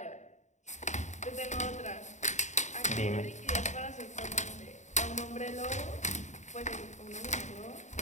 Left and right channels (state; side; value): late; right; 0.34 ms